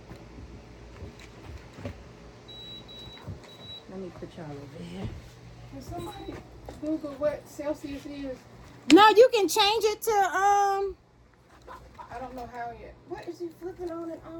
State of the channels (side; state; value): both; identical; correlation 1.00